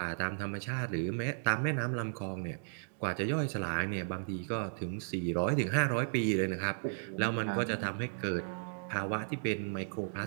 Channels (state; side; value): silent; left; digital silence